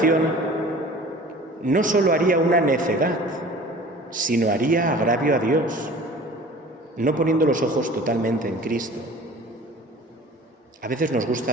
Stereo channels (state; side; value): normal; both; correlation 0.44